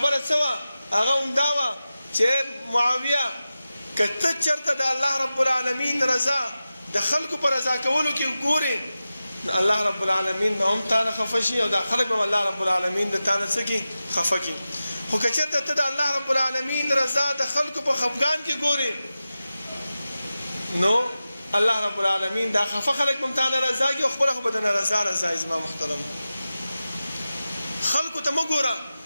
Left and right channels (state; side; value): inverted; both; correlation -0.94